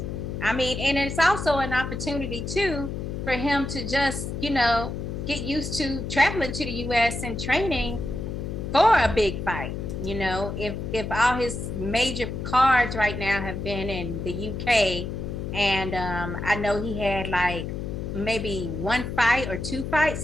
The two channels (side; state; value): left; noise; hum, 5 dB below the sound